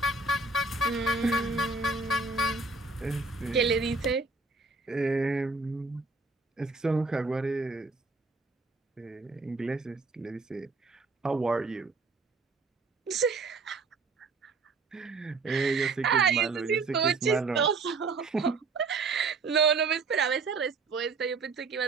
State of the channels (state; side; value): quieter; left; 3.9 dB